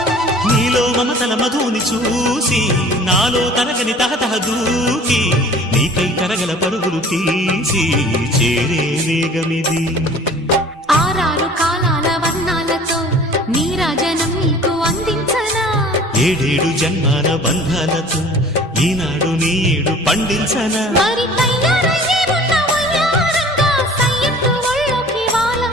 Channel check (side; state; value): both; normal; correlation 0.47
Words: నీలో మమతల మధుని చూసి నాలో తరగని తహతహ దూకి నీకై తరగల పరుగులు తీసి చేరే వేగమిది. ఆరారు కాలాల వర్ణాలతో నీరాజనం నీకు అందించనా, ఏడేడు జన్మాల బంధాలతో ఈనాడు నీ ఏడు పండించనా. మరి తయారయ్యే ఉన్న వయ్యారంగా సయ్యత్తు ఒళ్ళోకి